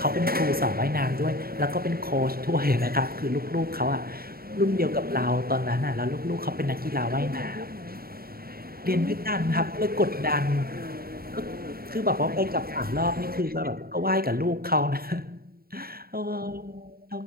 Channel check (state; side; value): late; left; 0.44 ms